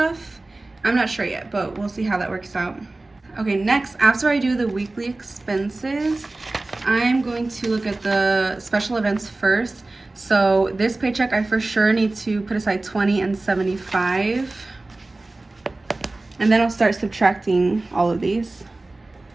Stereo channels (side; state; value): left; quieter; 3.0 dB